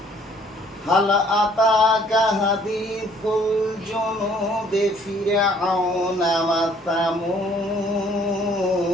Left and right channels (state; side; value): normal; both; correlation 0.60